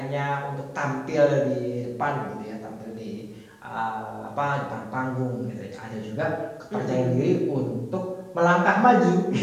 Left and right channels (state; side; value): identical; both; correlation 1.00